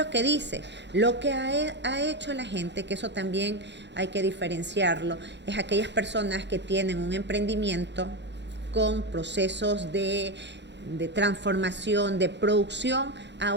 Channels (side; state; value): left; late; 0.51 ms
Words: que dice. Lo que ha hecho la gente, que eso también hay que diferenciarlo, es aquellas personas que tienen un emprendimiento con procesos de transformación, de producción a